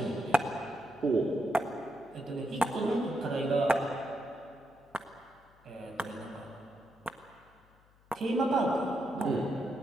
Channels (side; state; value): left; noise; hum, 29 dB below the sound